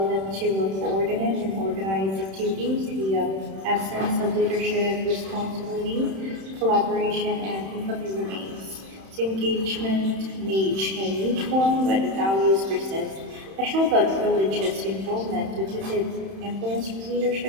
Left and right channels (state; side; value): late; left; 31 ms